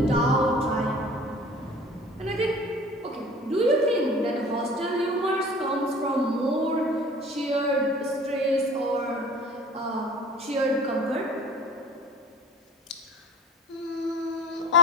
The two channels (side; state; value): both; normal; correlation 0.42